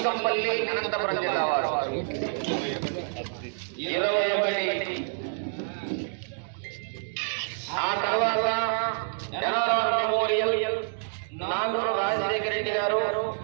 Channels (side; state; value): left; silent; digital silence